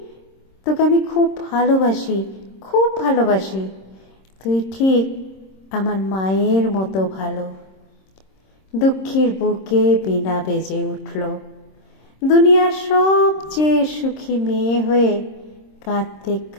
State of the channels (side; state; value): right; late; 26 ms